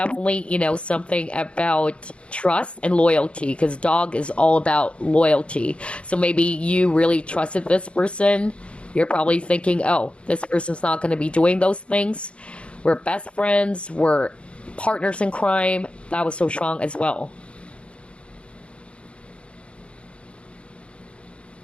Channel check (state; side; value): late; right; 0.059 ms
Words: something about trust and loyalty, because dog is all about loyalty. So maybe you really trusted this person. You're probably thinking, oh, this person's not going to be doing those things. We're best friends. We're partners in crime. That was so strong as well.